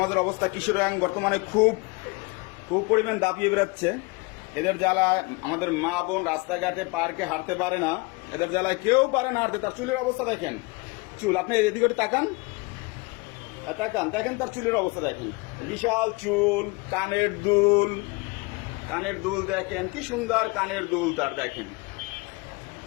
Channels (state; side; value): quieter; right; 26.7 dB